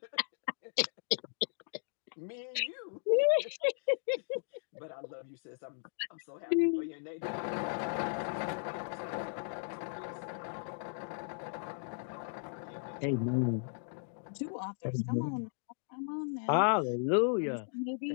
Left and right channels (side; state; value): right; silent; digital silence